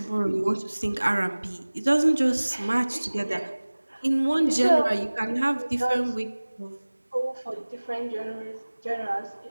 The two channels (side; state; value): both; inverted; correlation -1.00